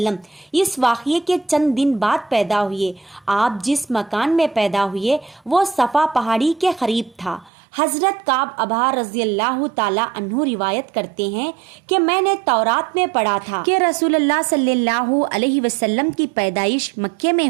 اس واقعے کے چند دن بعد پیدا ہوئے۔ آپ جس مکان میں پیدا ہوئے وہ صفا پہاڑی کے قریب تھا۔ حضرت کعب ابا رضی اللہ تعالی عنہ روایت کرتے ہیں کہ میں نے تورات میں پڑھا تھا کہ رسول اللہ صلی اللہ علیہ وسلم کی پیدائش مکے میں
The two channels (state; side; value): drops out; left; at 7.5 s